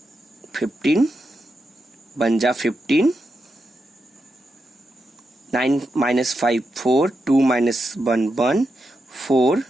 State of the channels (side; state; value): both; normal; correlation 0.86